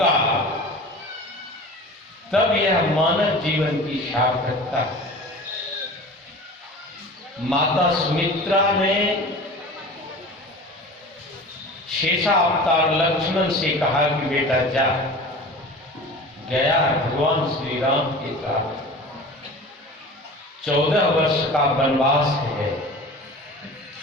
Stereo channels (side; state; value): both; normal; correlation 0.38